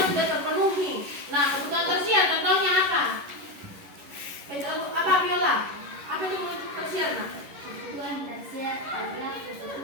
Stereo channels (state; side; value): late; left; 11 ms